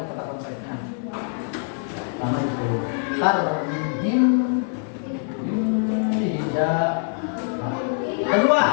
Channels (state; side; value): silent; right; 56 dB below the other